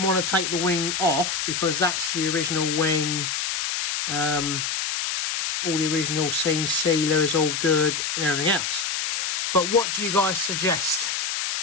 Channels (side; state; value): left; noise; hiss, 1 dB below the sound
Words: want to take the wing off because that's the original wing. All the original seam sealer is all good and everything else. But what do you guys suggest?